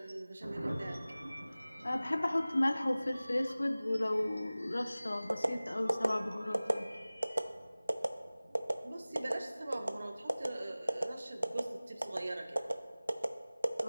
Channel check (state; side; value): inverted; both; correlation -0.98